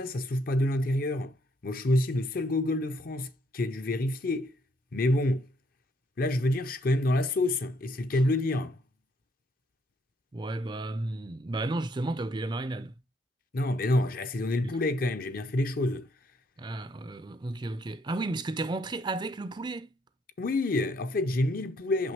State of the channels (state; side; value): normal; both; correlation 0.70